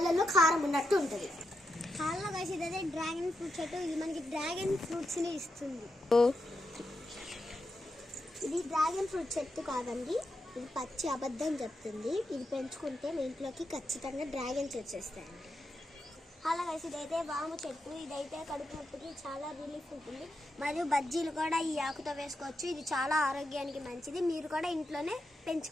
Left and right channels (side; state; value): both; normal; correlation 0.86